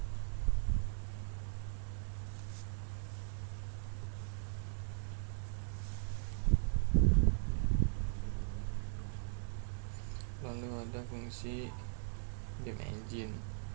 Lalu ada fungsi game engine.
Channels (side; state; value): left; silent; digital silence